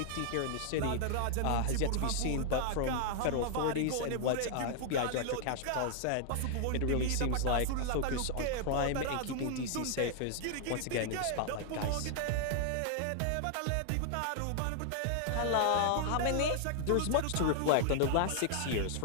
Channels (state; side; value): different; both; correlation 0.00